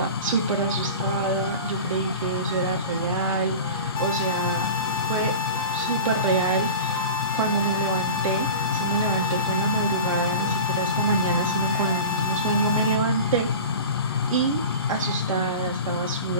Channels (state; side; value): inverted; both; correlation -0.34